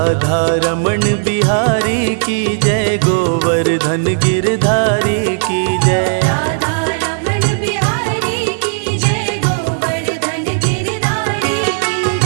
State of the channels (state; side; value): silent; left; digital silence